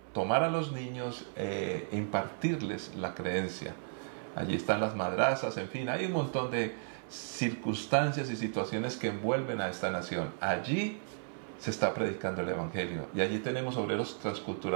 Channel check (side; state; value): left; silent; 55 dB below the other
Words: tomar a los niños e impartirles la creencia. Allí están las madrazas, en fin, hay un montón de circunstancias y situaciones que envuelven a esta nación. Allí se está predicando el Evangelio, y allí tenemos obreros